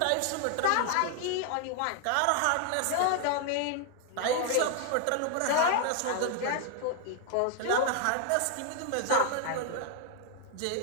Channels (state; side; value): different; both; correlation 0.00